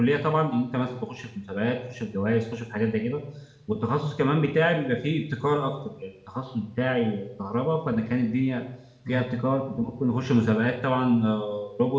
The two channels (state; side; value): identical; both; correlation 1.00